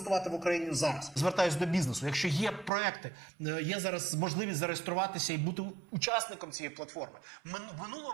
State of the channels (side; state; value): left; drops out; at 2.7 s